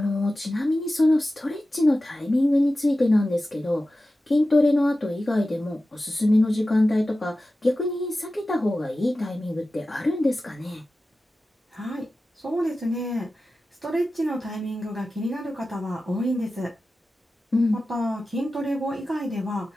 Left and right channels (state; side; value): normal; both; correlation 0.94